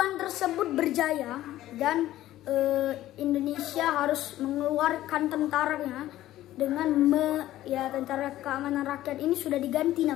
tersebut berjaya dan Indonesia harus mengeluarkan tentaranya dengan tentara keamanan rakyat ini sudah diganti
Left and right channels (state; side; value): quieter; right; 14.4 dB